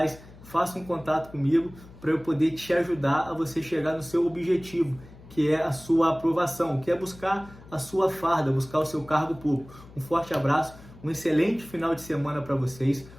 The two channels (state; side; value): noise; left; hum, 20 dB below the sound